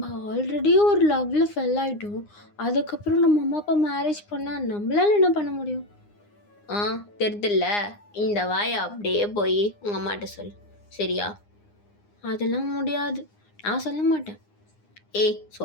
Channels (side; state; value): right; late; 9.7 ms